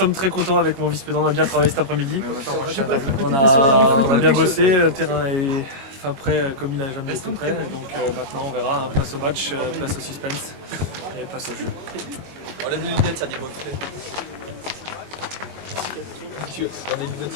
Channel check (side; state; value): left; late; 22 ms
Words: très contents avec mon vice-président, on a bien travaillé cet après-midi. On a bien bossé, le terrain est prêt comme il n'a jamais été prêt. Donc maintenant on verra, place au match, place au suspense et place au jeu. On lève les lunettes, ça dit reflet. On les lunettes,